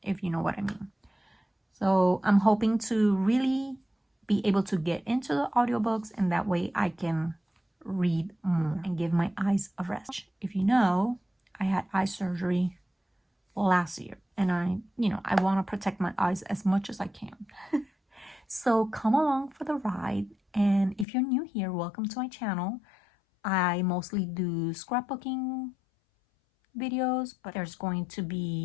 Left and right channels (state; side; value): drops out; right; at 21.1 s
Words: if you know what I mean. So I'm hoping to really be able to get into the audiobooks, and that way I can read more and give my eyes a rest. If you know, I had eye surgery last year, and I want to protect my eyes as much as I can. So come along for the ride. And if you're new here, welcome to my channel. I mostly do scrapbooking videos, but there's going to